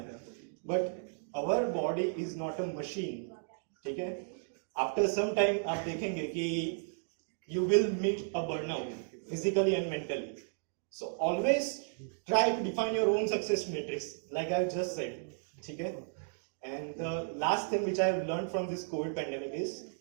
But our body is not a machine. ठीक है? आफ्टर सम टाइम आप देखेंगे कि you will meet a burnout physically and mentally. So always try to define your own success matrix like I have just said. ठीक है? And the last thing which I have learned from this COVID pandemic is,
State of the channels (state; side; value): silent; left; digital silence